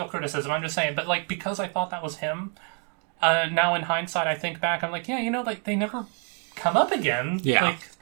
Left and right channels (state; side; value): quieter; left; 38.6 dB